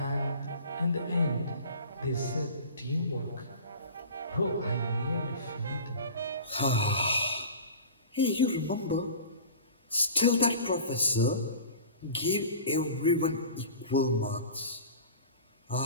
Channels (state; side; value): inverted; both; correlation -0.39